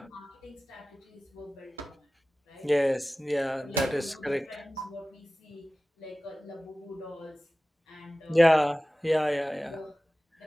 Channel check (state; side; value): normal; both; correlation 0.97